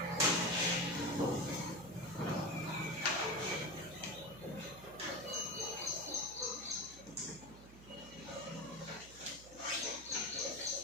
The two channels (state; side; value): noise; right; hum, 18 dB below the sound